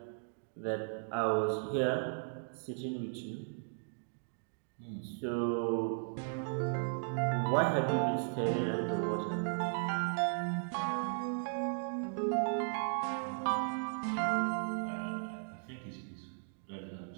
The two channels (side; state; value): left; silent; digital silence